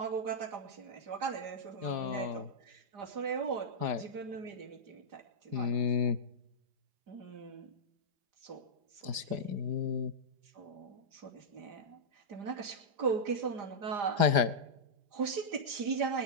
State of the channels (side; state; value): left; late; 4.9 ms